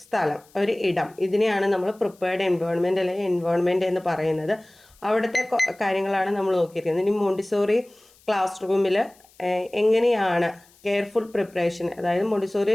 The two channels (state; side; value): noise; left; hiss, 29 dB below the sound